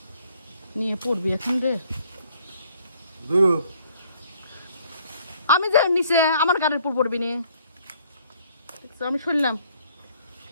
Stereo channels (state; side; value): inverted; both; correlation -0.63